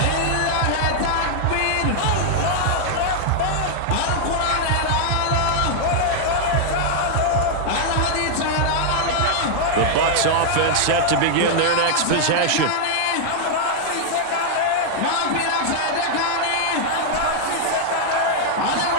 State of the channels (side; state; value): both; different; correlation -0.01